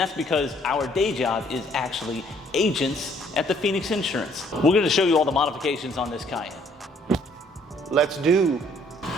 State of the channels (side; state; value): both; normal; correlation 0.62